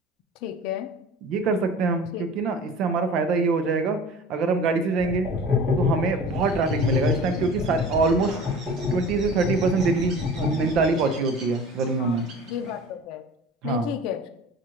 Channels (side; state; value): both; normal; correlation 0.40